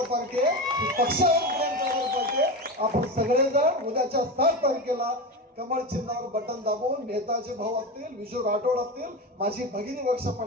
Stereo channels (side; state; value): both; normal; correlation 0.21